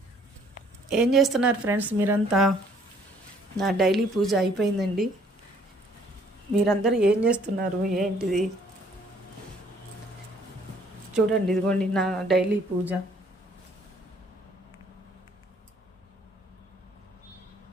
ఏం చేస్తున్నారు ఫ్రెండ్స్ మీరంతా? నా డైలీ పూజ అయిపోయిందండి. మీరందరూ ఏం చేస్తున్నారు ఏంటిది? చూడండి, ఇదిగోండి నా డైలీ పూజ.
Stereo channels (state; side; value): normal; both; correlation 0.61